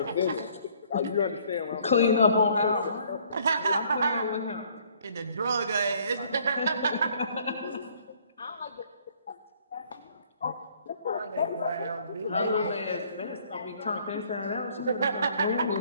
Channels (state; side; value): inverted; both; correlation -0.61